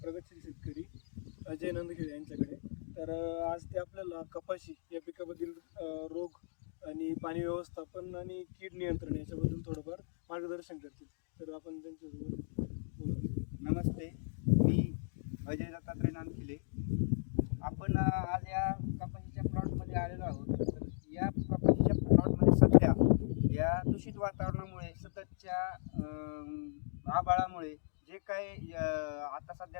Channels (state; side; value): silent; right; digital silence